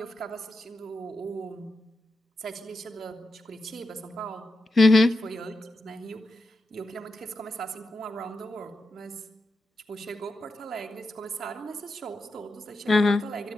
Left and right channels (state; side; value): normal; both; correlation 0.88